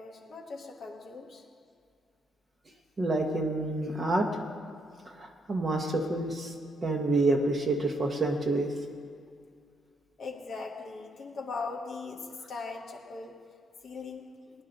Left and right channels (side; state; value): both; normal; correlation 0.74